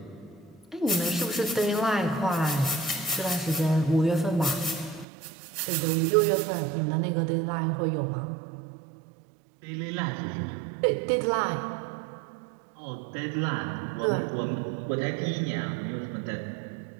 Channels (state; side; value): drops out; left; at 5.1 s